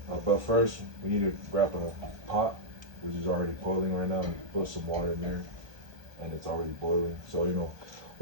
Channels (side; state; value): left; late; 1.2 ms